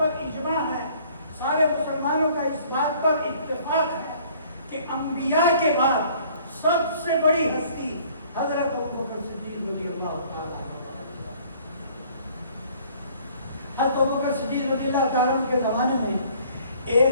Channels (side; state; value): both; inverted; correlation -0.56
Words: اجماع ہے، سارے مسلمانوں کا اس بات پر اتفاق ہے کہ انبیاء کے بعد سب سے بڑی ہستی حضرت ابوبکر صدیق رضی اللہ تعالیٰ عنہ۔ حضرت ابوبکر صدیق رضی اللہ تعالیٰ عنہ کے زمانے میں